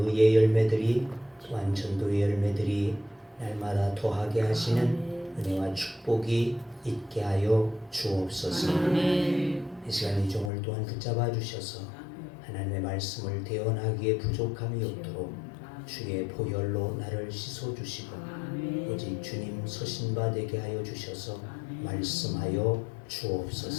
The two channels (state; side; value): drops out; right; at 10.5 s